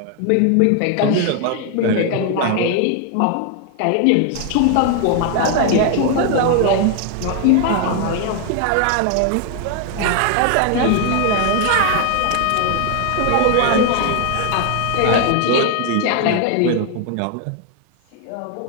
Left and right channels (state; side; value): different; both; correlation 0.00